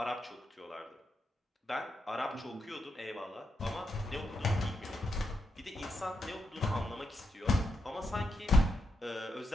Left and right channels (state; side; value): normal; both; correlation 0.82